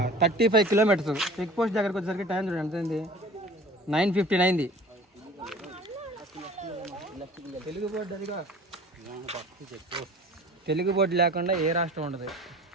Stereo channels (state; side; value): normal; both; correlation 0.44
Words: 35 కిలోమీటర్స్. చెక్ పోస్ట్ దగ్గరకు వచ్చేసరికి టైం చూడండి ఎంత అయింది, 9:15 అయింది. తెలుగు బోర్డు అదిగా, తెలుగు బోర్డు లేకుండా ఏ రాష్ట్రం ఉండదు.